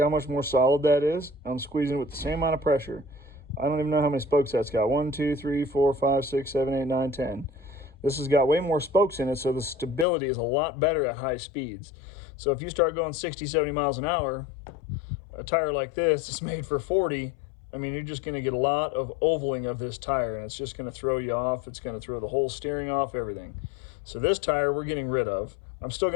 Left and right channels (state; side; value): drops out; right; at 10.1 s